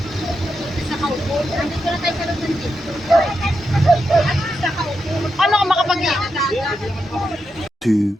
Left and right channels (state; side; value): normal; both; correlation 0.86